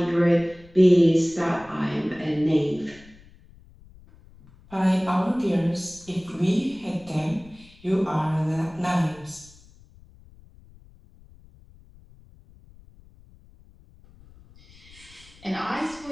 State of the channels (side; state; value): left; noise; rumble, 25 dB below the sound